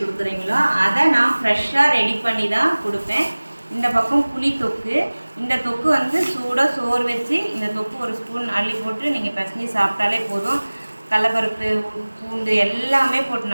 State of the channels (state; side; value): inverted; both; correlation -1.00